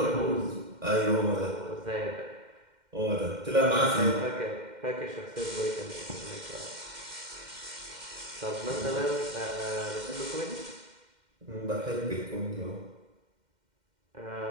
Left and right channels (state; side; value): late; left; 2.1 ms